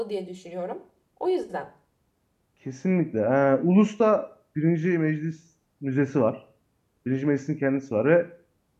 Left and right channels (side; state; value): both; identical; correlation 1.00